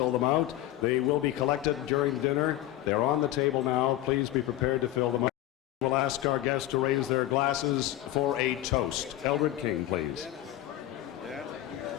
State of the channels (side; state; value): right; quieter; 14.2 dB